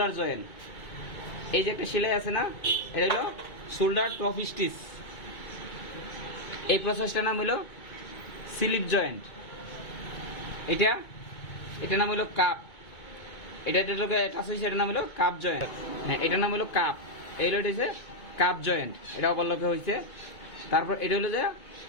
জয়েন্ট। এই যে একটা সেলাই আছে না, এটা হলো শোল্ডার টপ স্টিচ। এই প্রসেসটার নাম হলো স্লিপ জয়েন্ট। এটার নাম হলো কাপ। এটার নাম হলো কাপ জয়েন্ট। হ্যাঁ, এটার নাম হলো কাপ। এই হচ্ছে কাপ জয়েন্ট, এটা অবলকে হয়েছে। তারপর এটা হলো যে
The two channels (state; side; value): late; right; 2.2 ms